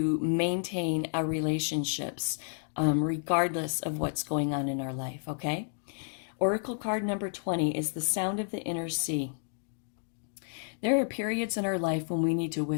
maintain our relationships regardless of what's going on in our life, okay? Oracle card number 20 is the sound of the inner sea. There are periods in our life when we need to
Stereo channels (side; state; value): right; silent; digital silence